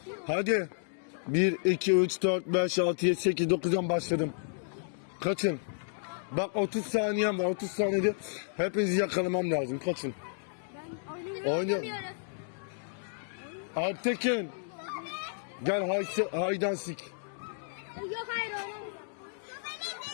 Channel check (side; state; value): right; silent; digital silence